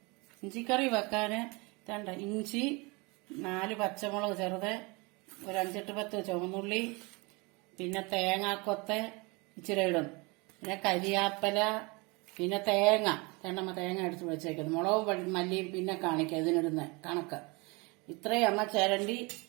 ഇഞ്ചിക്കറി വെക്കാന് വേണ്ട ഇഞ്ചി, 4 പച്ചമുളക് ചെറുത്, ഒരു 5-10 ചുവന്നുള്ളി, പിന്നെ തേങ്ങാക്കൊത്ത് ഇച്ചിരി ഇടും, പിന്നെ കരിയാപ്പല, പിന്നെ തേങ്ങ തേങ്ങ എടുത്ത് വെച്ചേക്കുന്നത്, മുളകും മല്ലിയും പിന്നെ കാണിക്കാം ഇതിനിടുന്ന കണക്ക്. ഇത്രയും അമ്മ ചിരണ്ടി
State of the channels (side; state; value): left; quieter; 27.3 dB